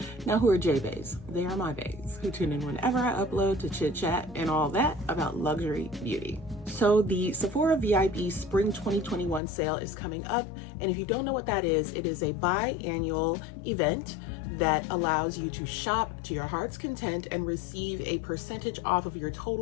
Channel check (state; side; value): drops out; right; at 9.4 s